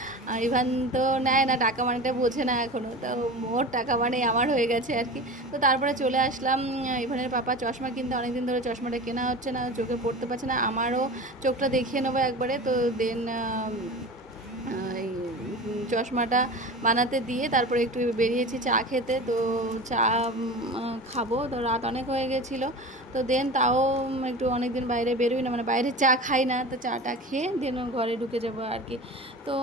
আর ইভান তো নেয় না টাকা, মানেটা বোঝে না এখনও, তো ওর টাকা মানে আমার হয়ে গেছে আর কি। তো তারপরে চলে আসলাম। ইভানের পাপা চশমা কিনতে, অনেকদিন ধরে চশমাটা কেনা হচ্ছে না, চোখে পড়তে পারছে না, আমারও চোখটা দেখিয়ে নেবো একবারে। তো দেন এই চশমাটা বানাতে দিয়ে তারপরে একটু বেরিয়েছি চা খেতে, তো চা খাবো, তো রাত অনেক হয়ে গেছিলো। তো দেন তাও একটু অনেক দিন বাইরে বেরোই না, মানে বাইরে চা খাই না, তো চাটা খেয়ে দেন ঘরে ঢুকে যাবো আর কি। তো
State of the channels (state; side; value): normal; both; correlation 0.32